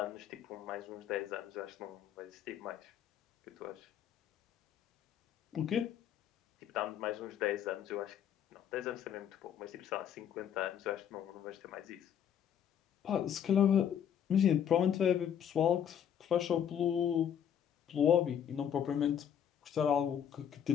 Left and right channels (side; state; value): right; quieter; 9.1 dB